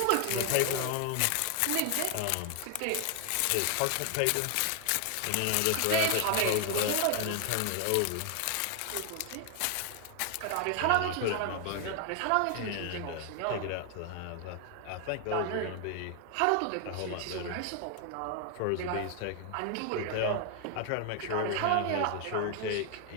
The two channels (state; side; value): different; both; correlation 0.00